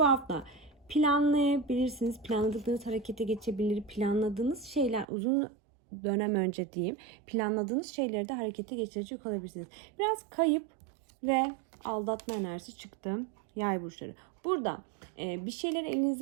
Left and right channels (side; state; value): left; drops out; at 5.1 s